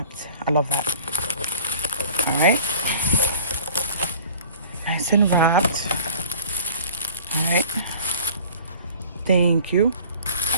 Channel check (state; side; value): inverted; both; correlation -0.47